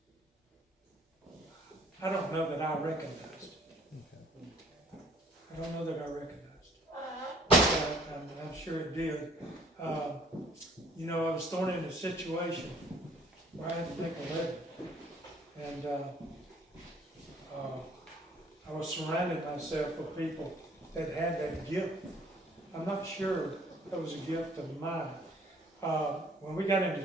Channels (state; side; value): normal; both; correlation 0.58